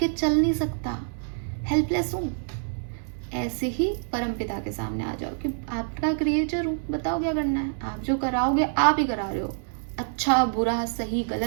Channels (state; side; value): silent; left; 61 dB below the other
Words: चल नहीं सकता, हेल्पलेस हूँ। ऐसे ही परमपिता के सामने आ जाओ कि आपका क्रिएटर हूँ, बताओ क्या करना है। आप जो कराओगे आप ही करा रहे हो, अच्छा बुरा सही